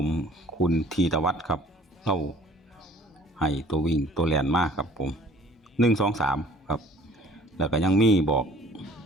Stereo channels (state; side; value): normal; both; correlation 0.53